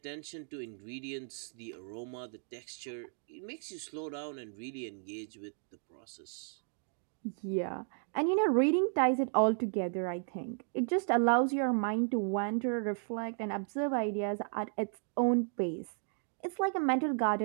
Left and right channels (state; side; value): silent; left; 55 dB below the other